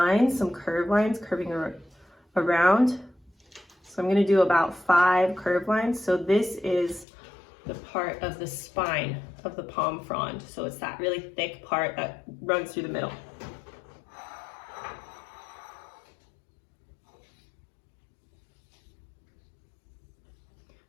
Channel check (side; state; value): right; drops out; at 7.1 s